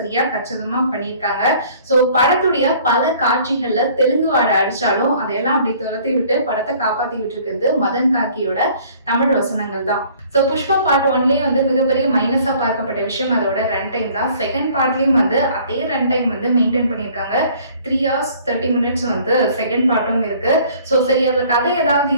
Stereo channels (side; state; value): both; inverted; correlation -0.55